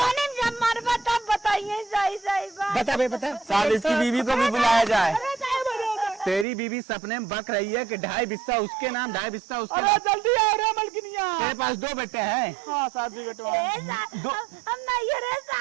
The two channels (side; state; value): left; drops out; at 6.5 s